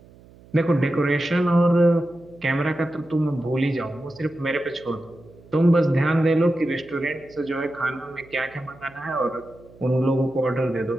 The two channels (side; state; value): right; noise; hum, 24 dB below the sound